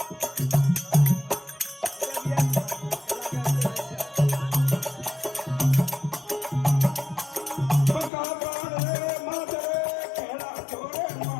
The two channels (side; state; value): right; drops out; at 8.1 s